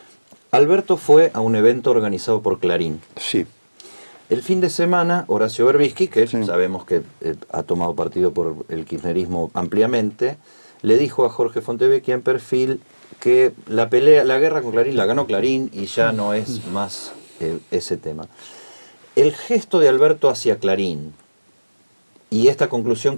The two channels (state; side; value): inverted; both; correlation -1.00